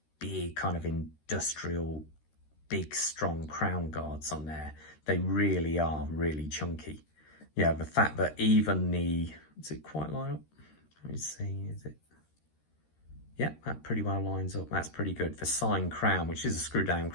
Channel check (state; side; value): late; right; 13 ms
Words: big kind of industrial, big strong crown guards on there. They really are really chunky. Yeah, the fact that even does it quite line up? Let me see, is it? Yeah, that pretty well lines up. That's pretty good. The sign crown, which is a screw down